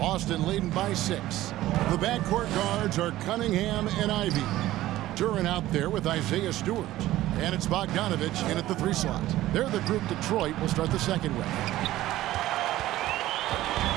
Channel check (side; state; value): left; quieter; 15.4 dB